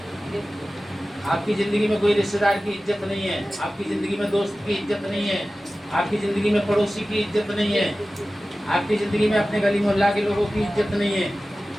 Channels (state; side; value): normal; both; correlation 0.96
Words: आपकी जिंदगी में कोई रिश्तेदार की इज्जत नहीं है, आपकी जिंदगी में दोस्त की इज्जत नहीं है, आपकी जिंदगी में पड़ोसी की इज्जत नहीं है, आपकी जिंदगी में अपने गली मोहल्ला के लोगों की इज्जत नहीं है।